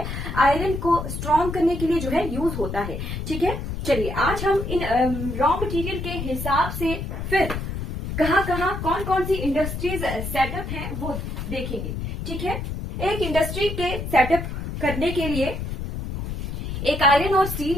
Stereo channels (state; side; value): noise; left; rumble, 5 dB below the sound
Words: आयरन को स्ट्रॉन्ग करने के लिए जो है यूज होता है। ठीक है, चलिए आज हम इन रॉ मटेरियल के हिसाब से फिर कहाँ कहाँ कौन कौन सी इंडस्ट्रीज सेटअप हैं वो देखेंगे। ठीक है, एक इंडस्ट्री के सेटअप करने के लिए, एक आयरन और स्टील